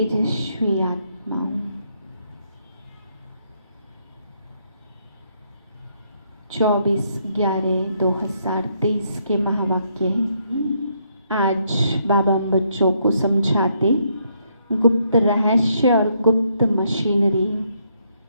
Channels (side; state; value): both; inverted; correlation -0.74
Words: आत्मा हूँ। 24/11/2023 के महावाक्य हैं। आज बाबा हम बच्चों को समझाते गुप्त रहस्य और गुप्त मशीनरी।